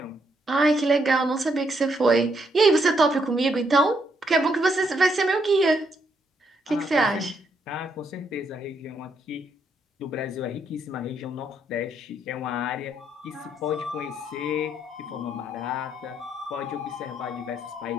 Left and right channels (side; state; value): both; normal; correlation 0.75